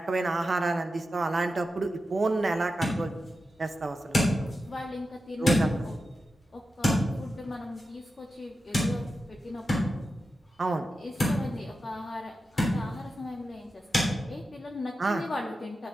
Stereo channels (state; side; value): normal; both; correlation 0.90